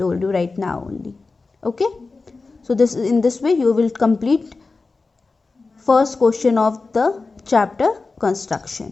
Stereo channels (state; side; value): quieter; right; 3.9 dB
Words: you right now only. Okay. So in this way you will complete first question of the chapter construction.